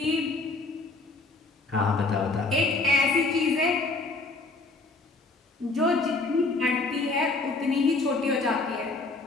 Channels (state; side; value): quieter; right; 3.5 dB